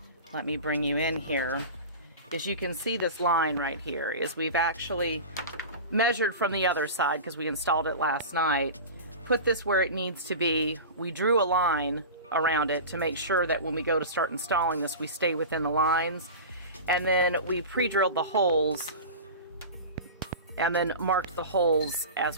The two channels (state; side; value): inverted; both; correlation -0.31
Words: let me bring you in here, is you can see this line right here, is we've actually measured from the other side because we installed it last night, put this where it needs to be. We drew a line around it to make sure that when we go to start installing this, we stay within the lines, and then we pre-drilled the holes and then marked the holes as